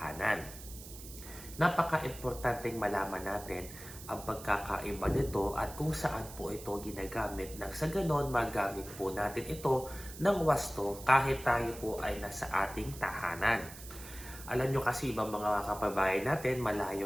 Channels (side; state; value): right; noise; hiss, 14 dB below the sound